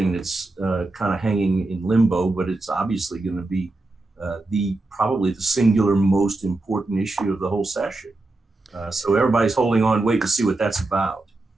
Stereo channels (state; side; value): quieter; left; 3.0 dB